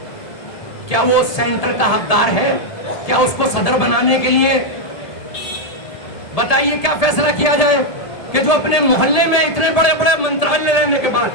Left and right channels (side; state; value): right; late; 1.8 ms